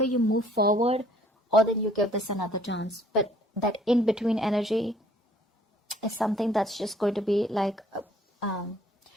you move forward, or then you give this another chance. But that in-between energy is something that's just going to be like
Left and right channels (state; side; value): normal; both; correlation 0.59